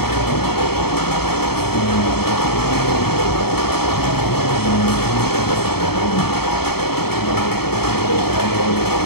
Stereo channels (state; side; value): late; right; 0.95 ms